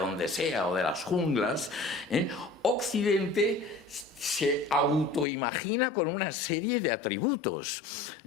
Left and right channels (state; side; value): drops out; right; at 5.2 s